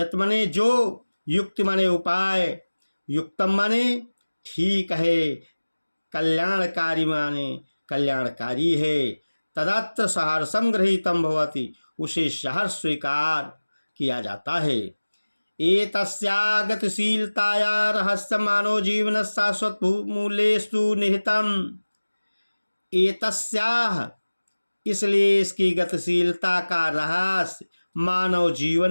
माने जो, युक्ति माने उपाय, युक्तम माने ठीक है, कल्याणकारी माने कल्याणकारी है, तदत्र सहर्षम गृहीतम भवति, उसे सहर्ष स्वीकार किया जाता है। एतस्या गतिशीलताया रहस्य मानव जीवन शाश्वत मूल्येषु निहितम। एतस्याः, इसलिए इसकी गतिशीलता का रहस्य मानव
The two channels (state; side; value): inverted; both; correlation -1.00